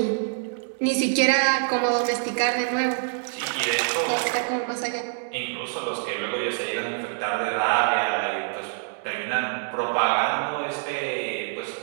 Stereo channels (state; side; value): silent; left; digital silence